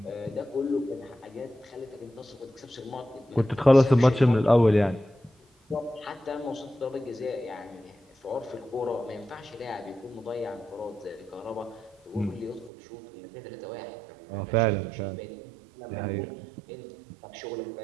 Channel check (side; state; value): left; drops out; at 12.7 s